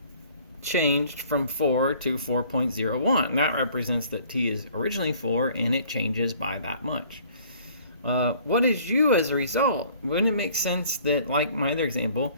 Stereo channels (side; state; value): both; inverted; correlation -0.55